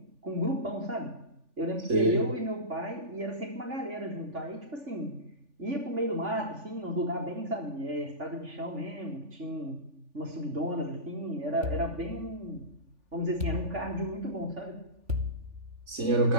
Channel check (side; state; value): left; late; 3.4 ms